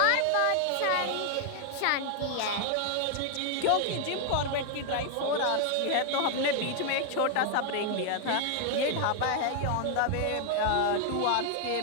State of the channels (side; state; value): both; different; correlation 0.00